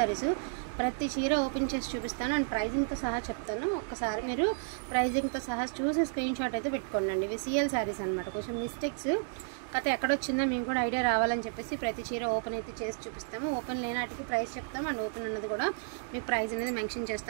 ప్రతి చీర ఓపెన్ చేసి చూపిస్తాను అండ్ ప్రైజింగ్తో సహా చెప్తాను. ఒక్కసారి మీరు ప్రైజింగ్తో సహా చూసి స్క్రీన్ షాట్ అయితే పెట్టుకోండి. ఇవి సిఎల్ శారీస్ అనమాట. కొంచెం మిస్టేక్స్ కథ ఎక్కడొచ్చిందో మేము కూడా ఐడియా రావాలని చెప్పేసి ప్రతి చీర ఓపెన్ అయితే చేసి చూపిస్తాము. ఓపెన్ లేనాటికి ప్రైస్ చెప్తాము అండ్ ఓపెన్ అన్నది కూడా మీకు ప్రైస్ అనేది మెన్షన్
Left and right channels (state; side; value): silent; left; digital silence